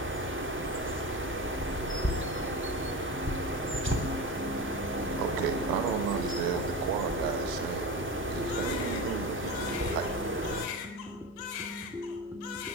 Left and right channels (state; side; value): normal; both; correlation 0.25